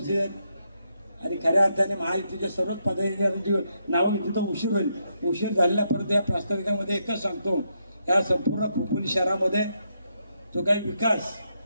आहेत आणि खऱ्या अर्थाने महायुतीच्या सर्वच पदाधिकाऱ्यांची नावं तिथं उशीर होईल। उशीर झालेल्या परंतु या प्रास्ताविकामध्ये एकच सांगतो, या संपूर्ण खोपोली शहरामध्ये जो काही विकास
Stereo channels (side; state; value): both; inverted; correlation -0.79